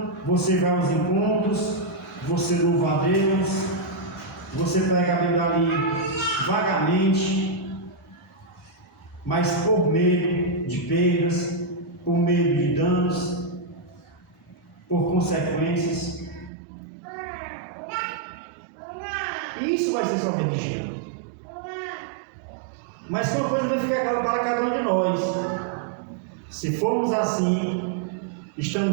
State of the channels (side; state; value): left; drops out; at 16.5 s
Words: você vai aos encontros, você louva a Deus, você pega a Bíblia ali vagamente, mas por medo de perdas, por medo de danos, por consequências. E isso vai ser só religião. Mas uma coisa vai ficar clara para cada um de nós. Se formos assim,